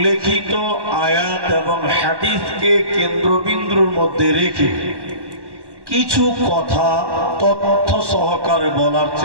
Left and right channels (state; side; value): late; left; 1.1 ms